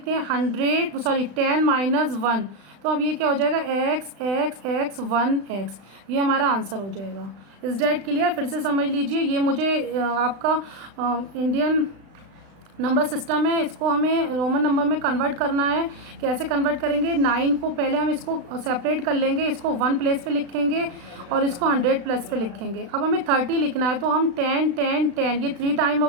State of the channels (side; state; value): left; late; 36 ms